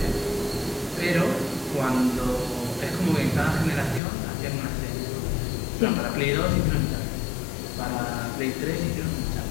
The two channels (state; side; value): drops out; right; at 4.0 s